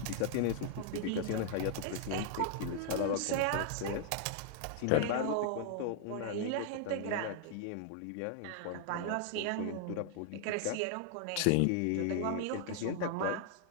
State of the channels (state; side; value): different; both; correlation 0.00